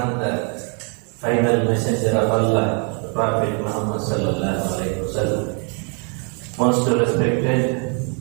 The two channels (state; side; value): quieter; left; 38.8 dB